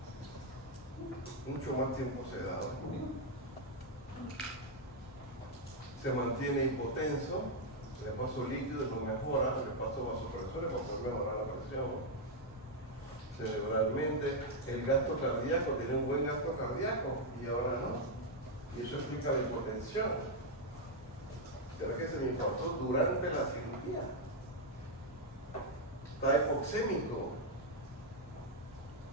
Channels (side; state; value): both; normal; correlation -0.01